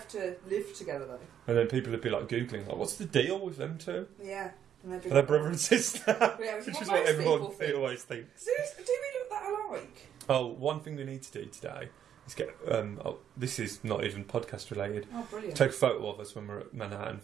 to live together though. And then people would be like googling, like, what's the deal with them two? Yeah. And they'd be Are they like, brother and sister? Yeah, which Which is is what what most everyone people think. always thinks. Do we look that alike? Oh, one thing we need to do today is get. This is not even podcast related. Oh, brilliant. Take a photo of us when we're at Manhattan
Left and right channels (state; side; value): quieter; left; 9.4 dB